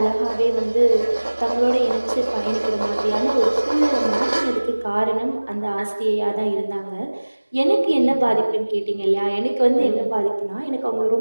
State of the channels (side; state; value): both; inverted; correlation -1.00